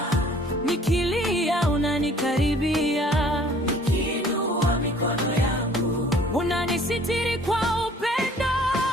nikilia unanikaribia, nikiinua mikono yangu unanisitiri kwa upendo.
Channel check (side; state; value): both; normal; correlation 0.55